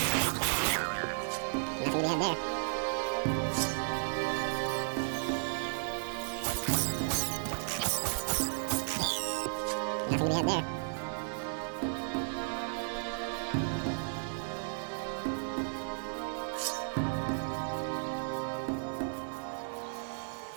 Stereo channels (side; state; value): left; silent; 55 dB below the other